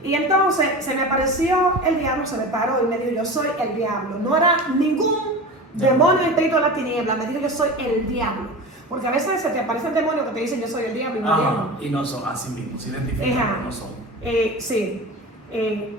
Y entonces se me apareció el diablo, se me paró y me dijo, yo soy el diablo. No era ningún demonio espíritu de la tiniebla, me dijo, yo soy el diablo. Porque a veces se te aparecen demonios que te dicen, yo soy el diablo y no el diablo. Y no son así mismos, se identifican, pero no son. Sí.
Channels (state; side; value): normal; both; correlation 0.31